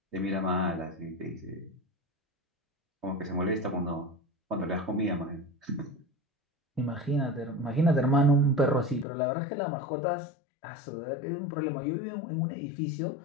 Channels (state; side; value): drops out; right; at 9.1 s